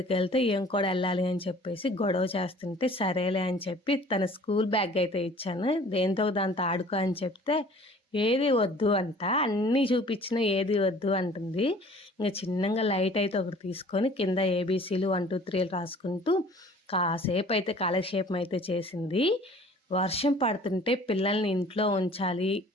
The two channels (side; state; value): both; normal; correlation 0.50